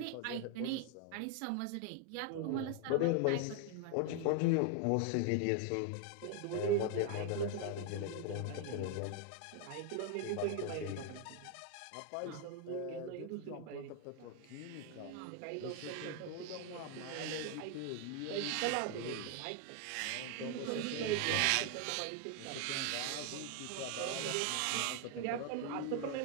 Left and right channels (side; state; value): both; different; correlation 0.00